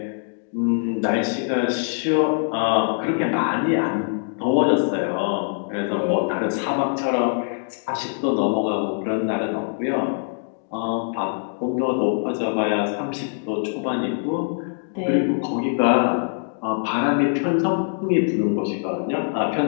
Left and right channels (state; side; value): silent; right; digital silence